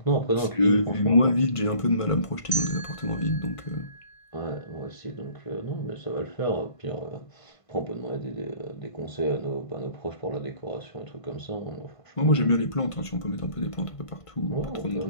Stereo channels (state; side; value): late; right; 1.5 ms